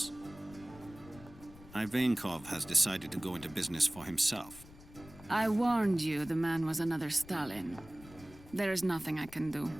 Ivankov has decided to go into business for himself. I warned you the man was another Stalin. There is nothing I can do.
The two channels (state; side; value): noise; left; rumble, 20 dB below the sound